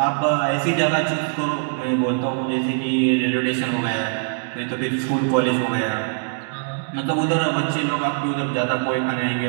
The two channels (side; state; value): left; silent; digital silence